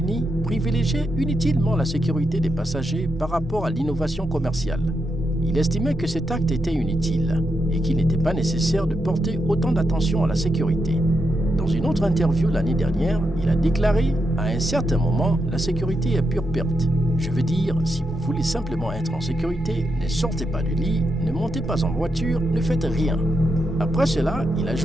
privilégiait inutilement la sécurité des passagers par rapport à l'innovation commerciale. Il estimait que cet acte était inutile et qu'il n'était pas nécessaire de porter autant d'attention à la sécurité. Dans une autre interview l'année dernière, il a déclaré « À un certain moment, la sécurité est pure perte. Je veux dire, si vous voulez simplement être en sécurité, ne sortez pas du lit, ne montez pas en voiture, ne faites rien. » Après cela, il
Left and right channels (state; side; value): normal; both; correlation 0.84